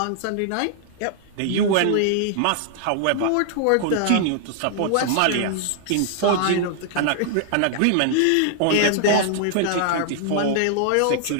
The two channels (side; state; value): both; different; correlation -0.01